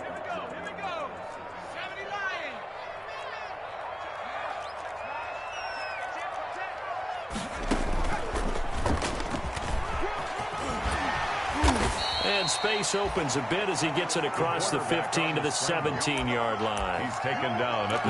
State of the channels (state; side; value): identical; both; correlation 1.00